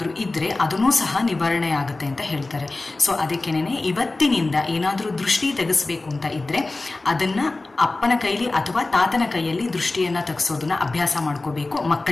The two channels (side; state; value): right; quieter; 3.2 dB